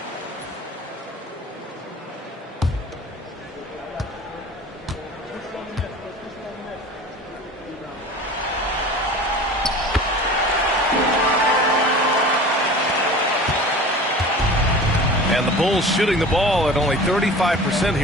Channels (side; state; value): both; normal; correlation 0.39